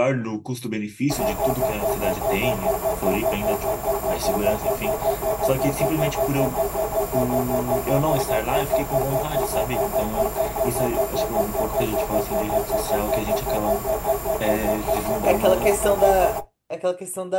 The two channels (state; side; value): identical; both; correlation 1.00